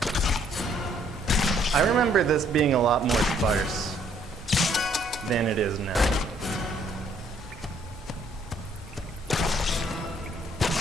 I remember this being a lot more sparse than it is now.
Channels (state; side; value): normal; both; correlation 0.65